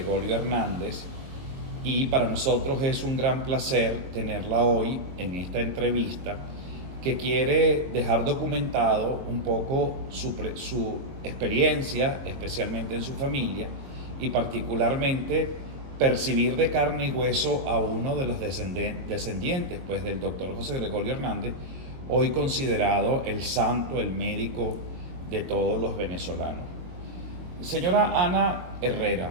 Hernández, y para nosotros es un gran placer tenerla hoy en esta entrevista que quiere dejar documentado un poco su experiencia, especialmente en su familia, y particularmente percibir de carne y hueso a uno de los descendientes pues, del doctor José Gregorio Hernández, hoy considerado el santo, el médico de todos los venezolanos. Señora Ana Herrera,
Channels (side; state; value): left; late; 22 ms